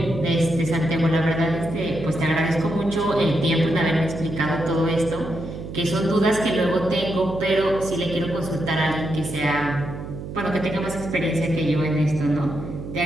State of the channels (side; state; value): right; noise; hum, 9 dB below the sound